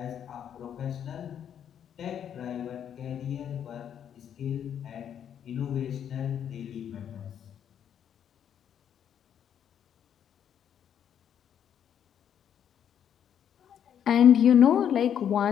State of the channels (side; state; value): right; quieter; 9.1 dB